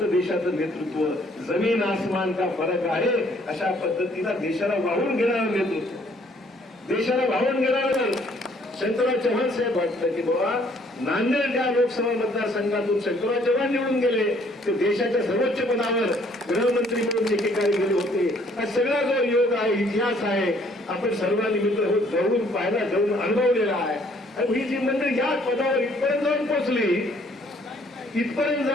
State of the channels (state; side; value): normal; both; correlation 0.63